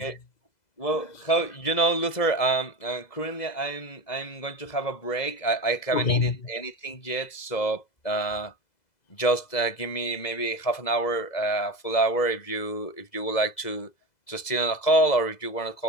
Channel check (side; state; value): right; late; 2.0 ms